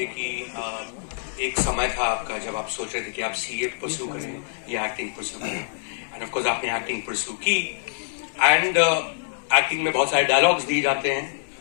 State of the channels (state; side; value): silent; right; digital silence